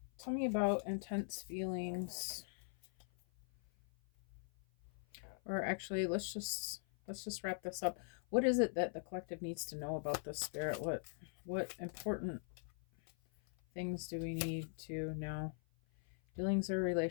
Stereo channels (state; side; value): silent; right; 50 dB below the other